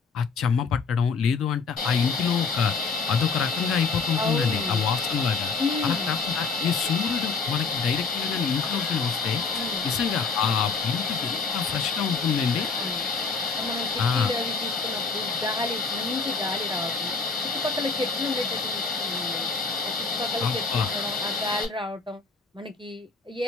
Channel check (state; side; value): quieter; right; 4.8 dB